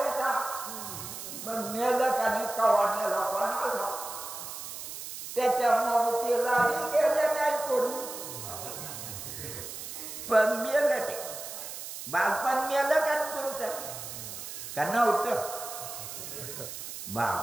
का मग मेलं का नाही कवाण्याला कोणाला त्याच्यामुळे तिला बी गेले नाही कोणी पण मेलं ते बालपण मेलं का तुमचं का नव्हतं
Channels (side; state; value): right; noise; hiss, 9 dB below the sound